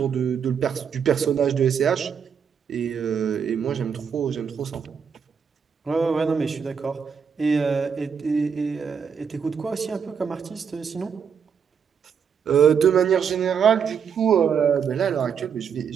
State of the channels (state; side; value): quieter; left; 7.0 dB